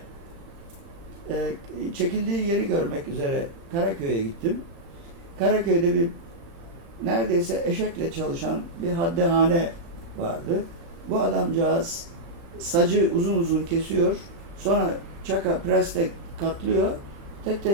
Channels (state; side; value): late; left; 35 ms